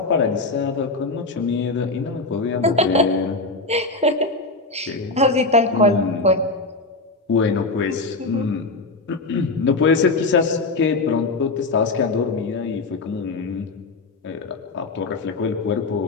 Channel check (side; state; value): right; quieter; 3.4 dB